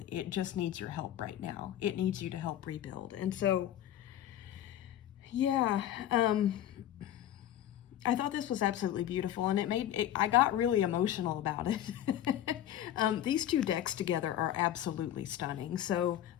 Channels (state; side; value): quieter; right; 11.6 dB